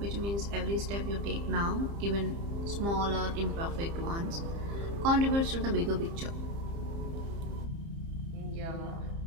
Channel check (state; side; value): late; left; 30 ms